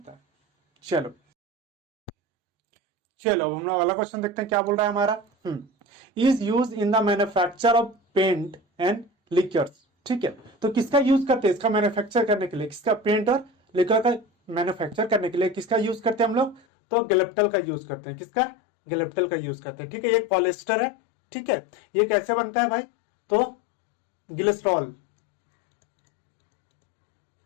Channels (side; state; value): right; drops out; at 16.6 s